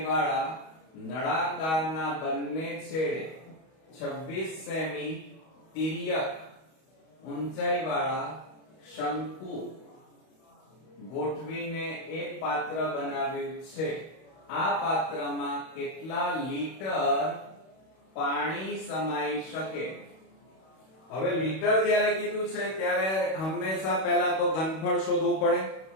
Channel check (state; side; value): late; right; 31 ms